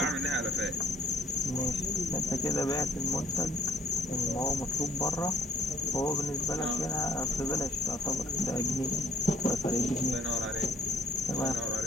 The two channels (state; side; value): normal; both; correlation 0.61